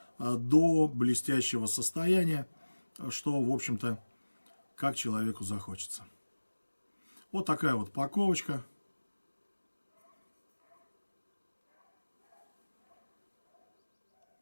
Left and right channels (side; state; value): both; inverted; correlation -1.00